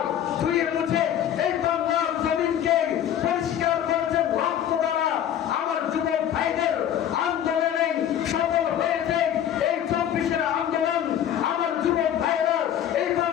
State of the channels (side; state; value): right; quieter; 10.3 dB